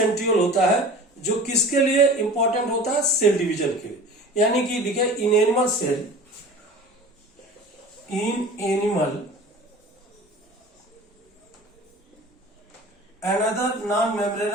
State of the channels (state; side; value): normal; both; correlation 0.40